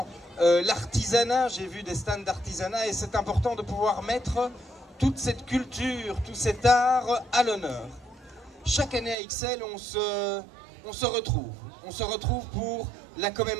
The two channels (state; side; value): drops out; left; at 9.2 s